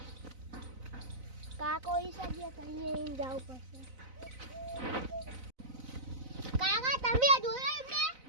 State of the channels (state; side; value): late; left; 4.0 ms